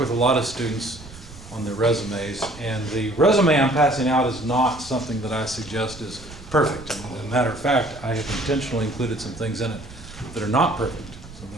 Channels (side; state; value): right; noise; rumble, 17 dB below the sound